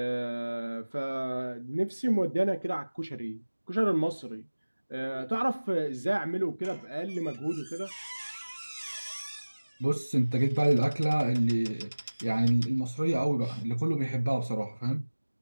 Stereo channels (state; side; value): inverted; both; correlation -1.00